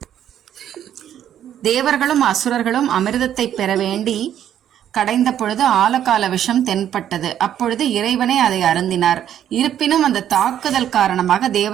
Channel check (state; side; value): quieter; left; 10.4 dB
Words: தேவர்களும் அசுரர்களும் அமிர்தத்தை பெற வேண்டி கடைந்த பொழுது ஆலகால விஷம் தென்பட்டது. அப்பொழுது இறைவனே அதை அருந்தினார். இருப்பினும் அந்த தாக்குதல் காரணமாக